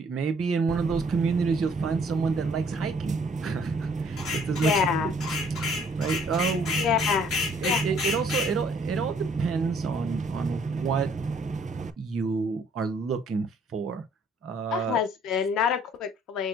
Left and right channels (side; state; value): both; normal; correlation 0.61